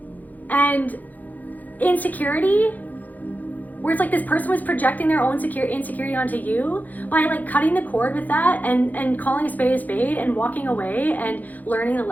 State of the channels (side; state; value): right; late; 0.082 ms